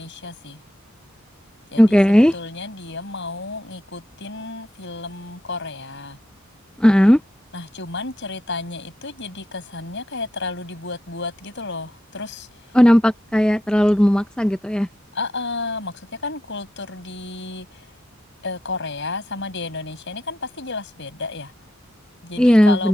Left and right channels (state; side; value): normal; both; correlation 0.86